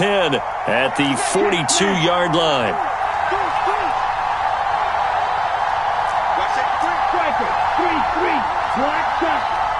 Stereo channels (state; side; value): identical; both; correlation 1.00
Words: at the 42-yard line.